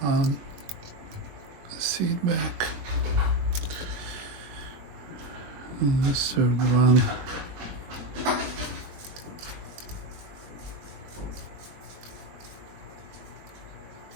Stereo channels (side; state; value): left; late; 21 ms